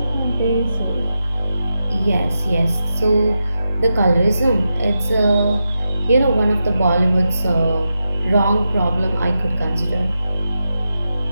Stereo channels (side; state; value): both; inverted; correlation -0.88